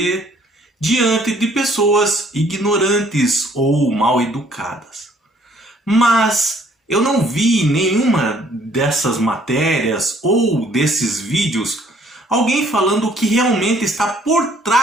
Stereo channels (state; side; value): normal; both; correlation 0.61